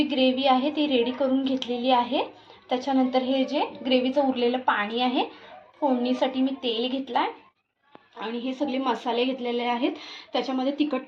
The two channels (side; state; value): both; identical; correlation 1.00